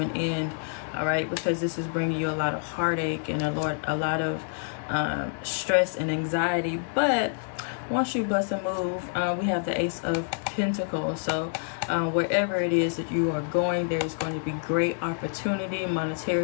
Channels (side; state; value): right; silent; 56 dB below the other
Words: end. All right, because this is bringing you a lot of heartache and a lot of stress and anxiety. But once you bust a move, we have the Ace of Pentacles. So wherever it is that you are going, there's going to be great opportunity,